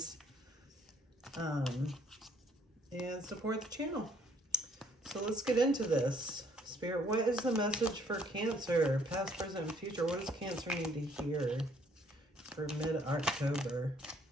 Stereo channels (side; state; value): both; normal; correlation 0.64